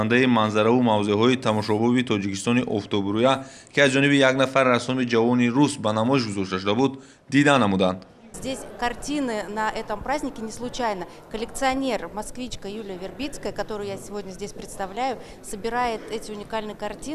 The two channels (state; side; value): identical; both; correlation 1.00